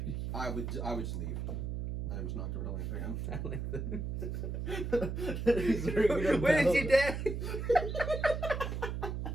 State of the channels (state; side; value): noise; right; hum, 3 dB below the sound